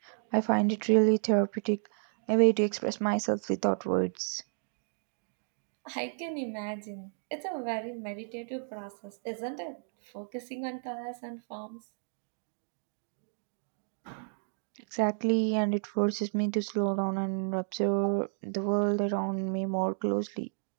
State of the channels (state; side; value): silent; left; digital silence